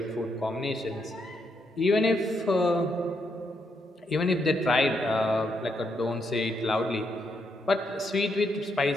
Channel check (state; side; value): normal; both; correlation 0.78